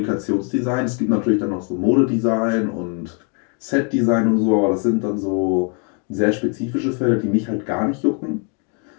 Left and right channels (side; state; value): right; quieter; 39.2 dB